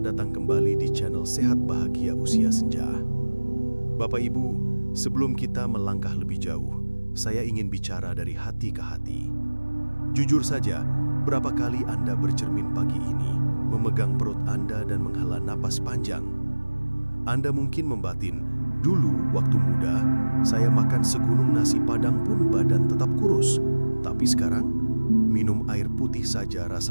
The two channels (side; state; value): both; inverted; correlation -1.00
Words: datang kembali di channel Sehat Bahagia Usia Senja. Bapak Ibu, sebelum kita melangkah lebih jauh, saya ingin bicara dari hati ke hati. Jujur saja, berapa kali Anda bercermin pagi ini, memegang perut Anda dan menghela napas panjang? Anda mungkin membatin, dulu waktu muda, saya makan segunung nasi padang pun badan tetap kurus. Tapi sekarang, minum air putih saja